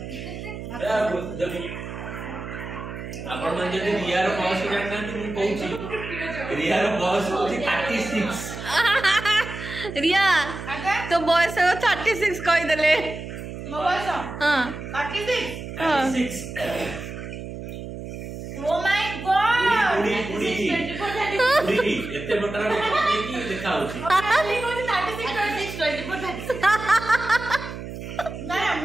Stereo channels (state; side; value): noise; right; hum, 9 dB below the sound